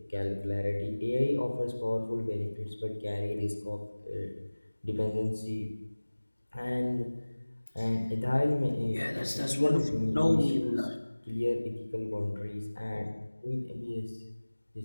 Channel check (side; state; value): both; inverted; correlation -1.00